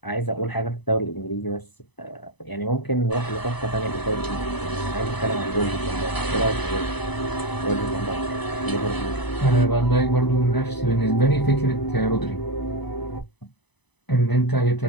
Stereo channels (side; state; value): right; late; 1.0 ms